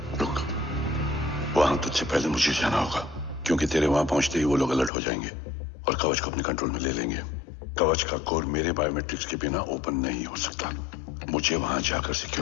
रुक। वहां तुझसे पहले मुझे जाना होगा, क्योंकि तेरे वहां पहुंचते ही वो लोग अलर्ट हो जाएंगे और कवच को अपने कंट्रोल में ले लेंगे। कवच का कोड मेरे बायोमेट्रिक्स के बिना ओपन नहीं हो सकता। मुझे वहां जाकर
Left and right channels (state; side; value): drops out; right; at 4.9 s